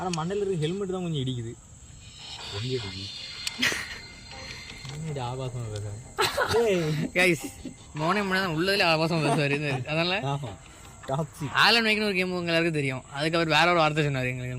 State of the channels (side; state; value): both; identical; correlation 1.00